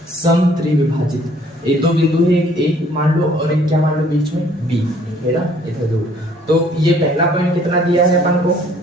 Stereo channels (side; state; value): both; normal; correlation 0.59